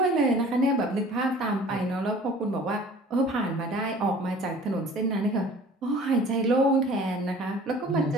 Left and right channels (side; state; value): both; normal; correlation 0.47